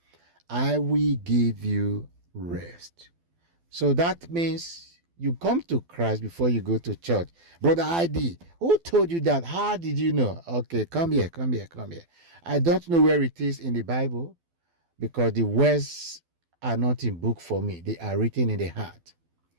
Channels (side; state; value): left; late; 12 ms